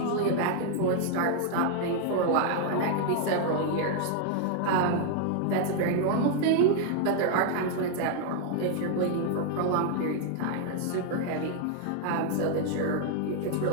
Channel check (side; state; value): both; different; correlation 0.00